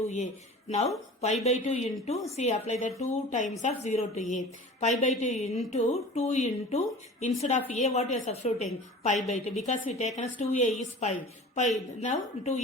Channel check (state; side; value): normal; both; correlation 0.40